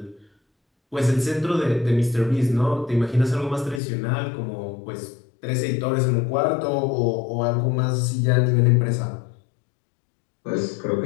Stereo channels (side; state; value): right; drops out; at 3.8 s